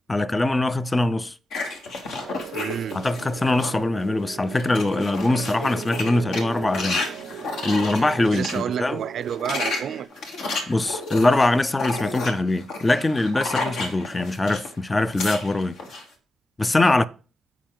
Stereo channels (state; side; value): normal; both; correlation 0.91